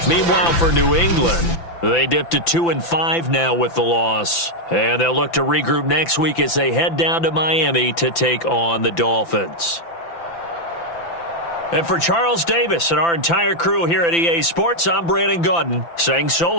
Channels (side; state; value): right; late; 5.9 ms